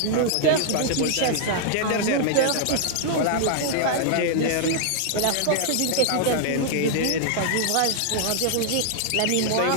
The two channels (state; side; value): different; both; correlation -0.01